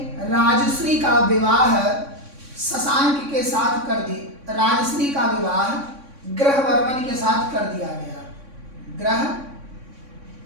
राजश्री का विवाह शशांक के साथ कर दी। राजश्री का विवाह ग्रहवर्मन के साथ कर दिया गया।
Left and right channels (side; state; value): left; late; 3.6 ms